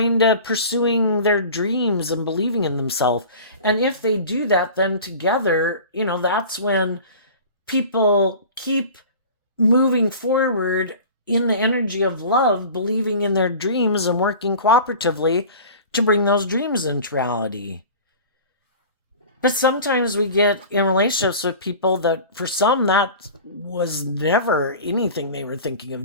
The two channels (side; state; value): both; inverted; correlation -0.39